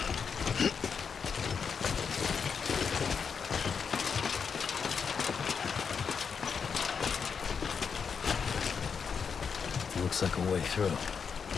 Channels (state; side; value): quieter; right; 6.2 dB